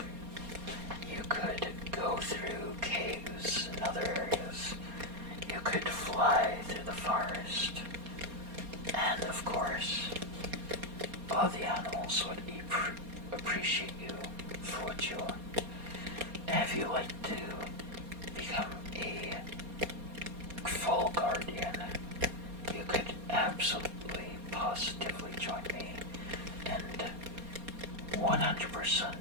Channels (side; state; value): left; late; 4.2 ms